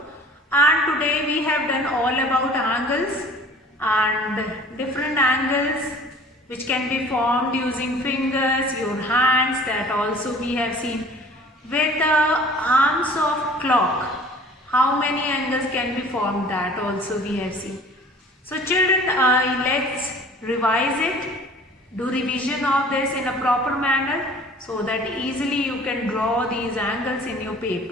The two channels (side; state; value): both; normal; correlation 0.48